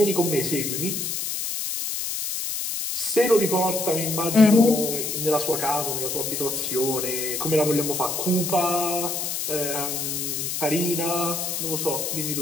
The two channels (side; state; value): left; noise; hiss, 2 dB below the sound